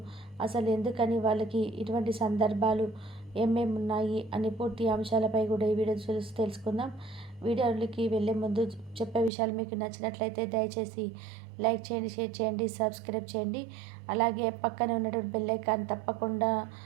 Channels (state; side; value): drops out; left; at 9.3 s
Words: అసలు ఎందుకని వాళ్ళకి ఇటువంటి సందర్భాలు ఏమేమి ఉన్నాయి అని పూర్తి అంశాలపై కూడా ఈ వీడియో చూసి తెలుసుకుందాం. వీడియోలకి వెళ్ళే ముందు చెప్పే విషయాలు మీకు నచ్చినట్లయితే దయచేసి లైక్ చేయండి, షేర్ చేయండి, సబ్స్క్రైబ్ చేయండి. అలాగే పక్కన ఉన్నటువంటి బెల్ ఐకాన్ తప్పకుండా